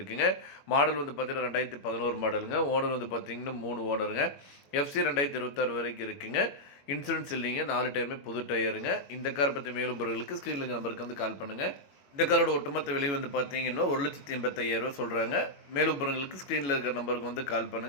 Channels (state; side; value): late; right; 21 ms